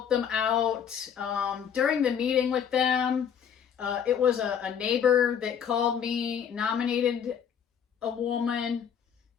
them out. During the meeting with them, it was a neighbor that called me, nominated a woman,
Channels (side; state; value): right; quieter; 8.0 dB